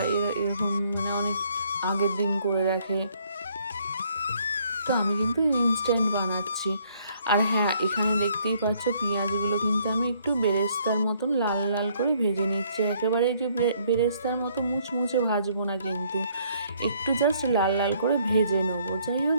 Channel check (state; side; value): inverted; both; correlation -0.65